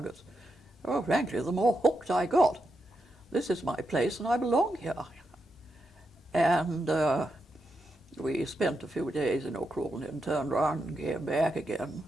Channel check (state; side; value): normal; both; correlation 0.85